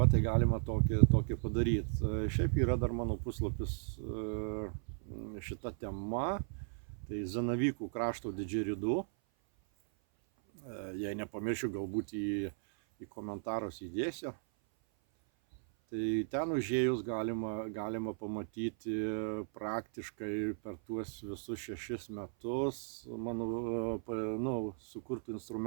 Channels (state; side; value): silent; left; 54 dB below the other